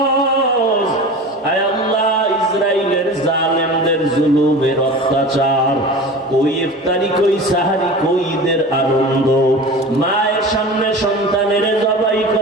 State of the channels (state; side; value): normal; both; correlation 0.35